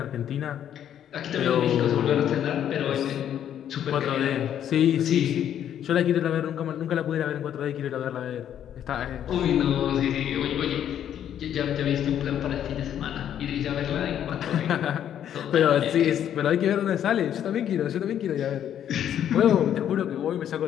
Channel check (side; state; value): right; quieter; 10.1 dB